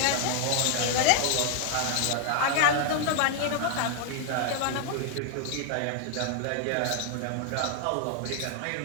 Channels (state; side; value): different; both; correlation 0.00